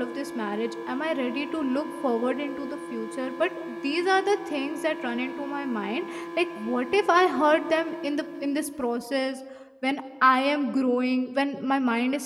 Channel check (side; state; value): both; identical; correlation 1.00